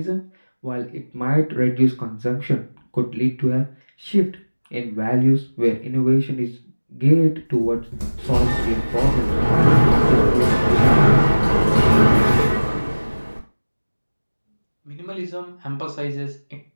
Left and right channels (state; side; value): inverted; both; correlation -1.00